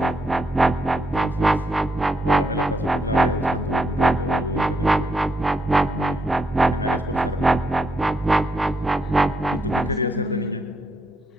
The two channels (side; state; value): both; normal; correlation 0.78